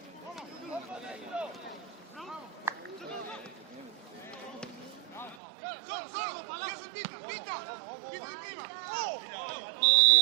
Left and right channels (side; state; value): left; drops out; at 5.4 s